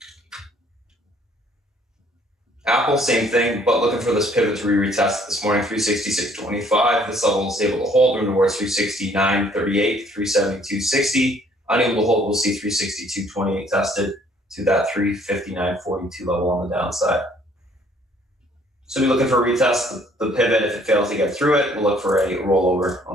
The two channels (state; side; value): normal; both; correlation 0.61